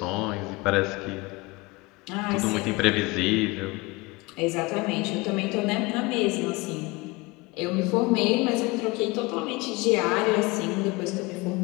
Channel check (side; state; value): right; quieter; 24.0 dB